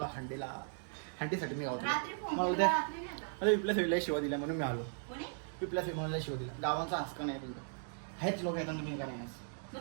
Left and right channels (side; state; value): left; silent; digital silence